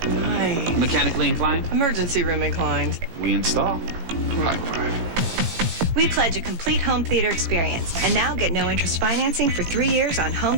Hi. Mechanically inclined? Emergency room inclined. We install. High five. We pledge a complete home theater experience, and now get no interest financing for 3 years on home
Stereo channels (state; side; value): late; left; 18 ms